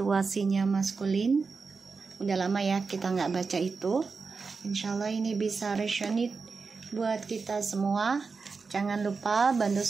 maskulin. Udah lama ya kita nggak baca itu. Insyaallah ini bisa resonate buat kita semua. Jangan lupa bantu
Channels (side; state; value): left; quieter; 4.7 dB